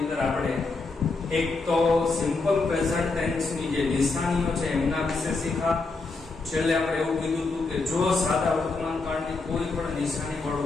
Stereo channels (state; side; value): quieter; right; 3.7 dB